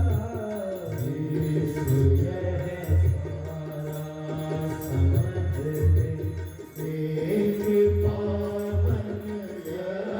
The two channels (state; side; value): identical; both; correlation 1.00